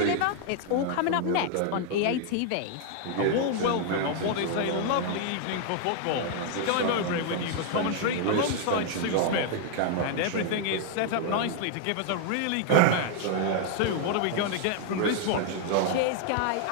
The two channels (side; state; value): both; different; correlation 0.00